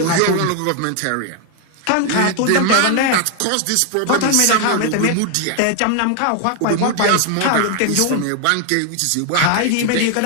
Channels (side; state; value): both; different; correlation 0.00